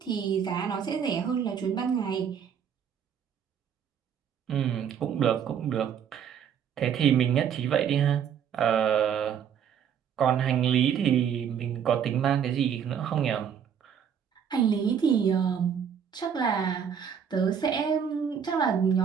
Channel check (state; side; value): quieter; left; 8.0 dB